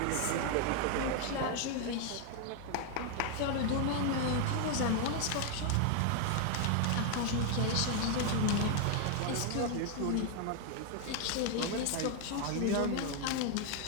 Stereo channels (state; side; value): different; both; correlation 0.00